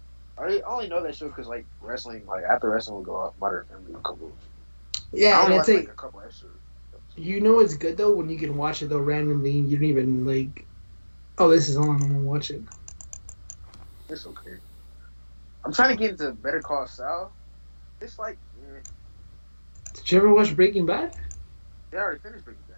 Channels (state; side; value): inverted; both; correlation -1.00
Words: I I only know that show because like wrestling, like after wrestling would go off, Modern Family would come over. I Yeah, and only it's watched like like a couple episodes. you know it's good though when you can watch it though randomly and you don't even like. Oh, this is on. I'm gonna watch it. It's okay. I'm trying to get into Better Call Saul. It's like, Did you ever watch Breaking Bad? they already finished Breaking